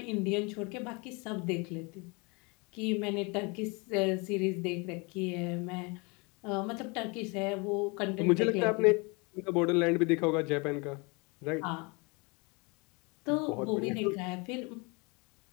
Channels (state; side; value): quieter; right; 29.3 dB